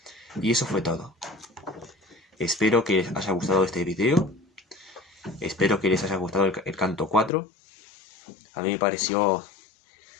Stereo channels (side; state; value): right; drops out; at 7.3 s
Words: Y eso fue todo. Espero que les haya gustado este video. Espero que les haya gustado el canto 4. A mí me pareció